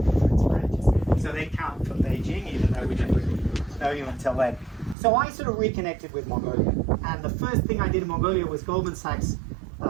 so they count for Beijing, even though we didn't really know you until then. So I sort of reconnected with Mongolia, and the first thing I did in Mongolia was Goldman Sachs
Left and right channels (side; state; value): left; drops out; at 5.0 s